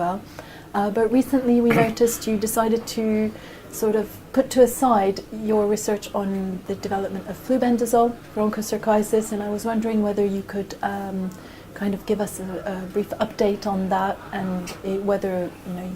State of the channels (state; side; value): identical; both; correlation 1.00